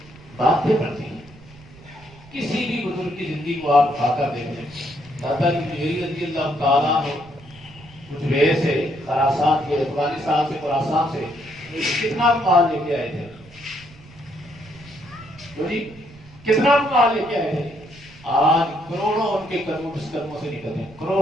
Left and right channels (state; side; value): noise; right; rumble, 22 dB below the sound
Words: باتیں پڑتی ہیں۔ کسی بھی بزرگ کی زندگی کو آپ اٹھا کر دیکھ لیں، دادا کی جیری رضی اللہ تعالیٰ عنہ کچھ سے خراسان کے افغانستان سے خراسان سے کتنا مال لے کے آئے تھے، جی کتنا مال لے کے آئے تھے۔ آج کروڑوں ان کے قدموں سے نکلتے ہیں،